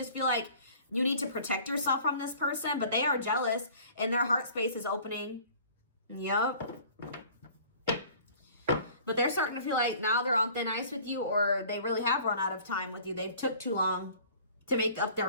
feel like you need to protect yourself from this person, but they are jealous and their heart space is opening. Yep. But they're starting to feel like now they're on thin ice with you, or they really have run out of time with you. They've took too long to make up their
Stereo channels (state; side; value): inverted; both; correlation -0.49